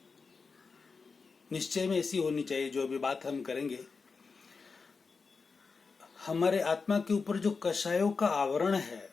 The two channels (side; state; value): right; quieter; 4.7 dB